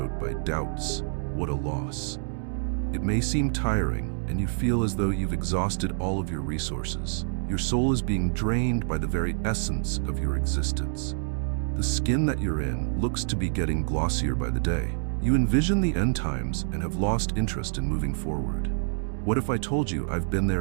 by doubts. What a loss. It may seem tiring, and you feel as though you've exhausted all of your resources. Your soul is being drained by the very essence of your existence. The skin that you're in looks to be getting glossier by the day. You envision the end times and have lost interest in moving forward. What if I told you I've been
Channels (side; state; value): left; silent; digital silence